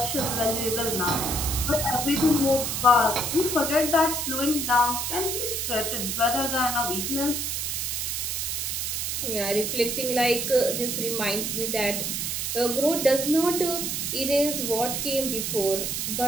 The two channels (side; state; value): right; noise; hiss, 1 dB below the sound